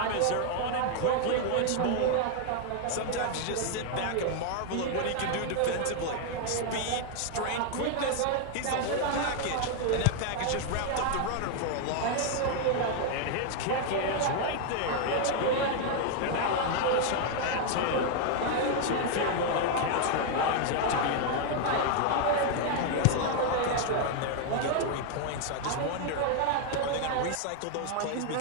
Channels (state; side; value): different; both; correlation 0.00